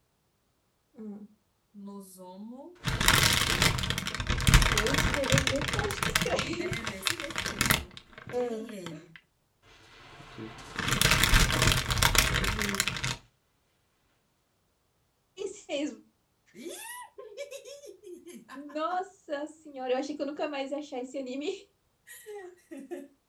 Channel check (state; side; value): identical; both; correlation 1.00